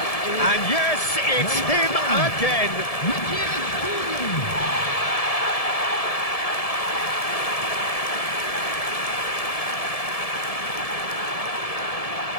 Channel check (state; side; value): late; right; 1.7 ms